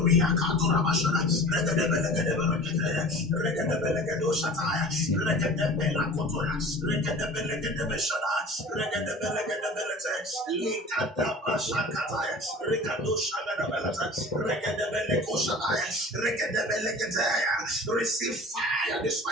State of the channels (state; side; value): normal; both; correlation 0.40